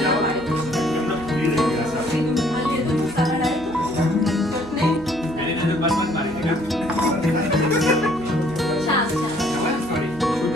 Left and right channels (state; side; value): noise; right; hum, 17 dB below the sound